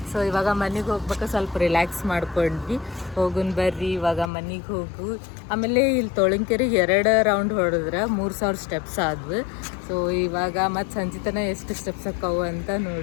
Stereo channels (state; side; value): drops out; right; at 4.3 s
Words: ಸೊ ಇವಾಗ ಮನೆಗೆ ಹೋಗ್ಬೇಕು, ಸ್ವಲ್ಪ ರಿಲ್ಯಾಕ್ಸ್ ಮಾಡ್ಕೊಂಡ್ವಿ. ಹೋಗುನ್ ಬರ್ರಿ ಇವಾಗ ಮನೆಗೆ ಹೋಗು. ಆಮೇಲೆ ಇಲ್ಲಿ ತೋಳಂಕೆರೆಗೆ 2 ರೌಂಡ್ ಹೊಡೆದ್ರೆ 3000 ಸ್ಟೆಪ್ಸ್ ಆದ್ವು. ಸೊ ಇವಾಗ ಮತ್ತು ಸಂಜೆ ತನಕ ಎಷ್ಟು ಸ್ಟೆಪ್ಸ್ ಆಕ್ಕವು ಅಂತ